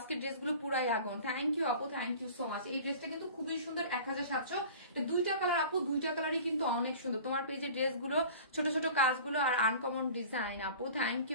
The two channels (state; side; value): inverted; both; correlation -0.42